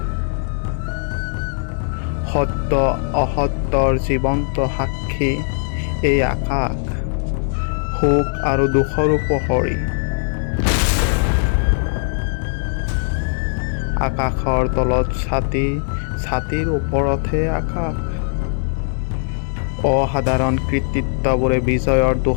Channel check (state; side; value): silent; right; digital silence